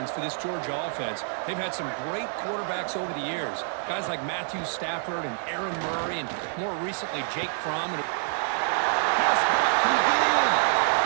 for this Georgia offense. They've had some great quarterbacks over the years. Guys like Matthew Stafford and Aaron Murray, and more recently Jake Fromm. Pass back. Can he get in?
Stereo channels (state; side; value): silent; left; 60 dB below the other